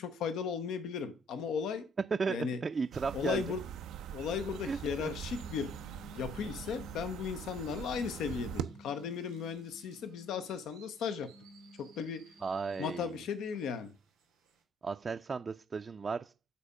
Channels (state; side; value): normal; both; correlation 0.61